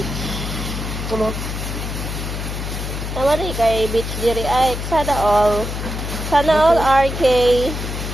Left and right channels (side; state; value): left; noise; hum, 5 dB below the sound